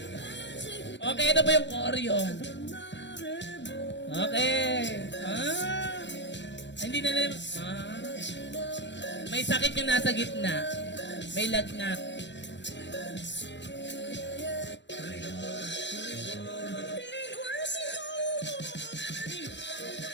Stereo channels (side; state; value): right; late; 0.52 ms